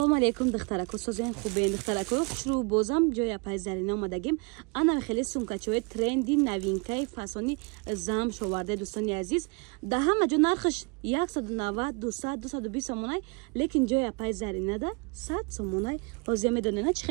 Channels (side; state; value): left; quieter; 31.8 dB